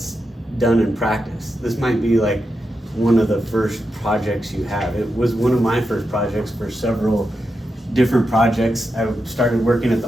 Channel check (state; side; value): normal; both; correlation 0.87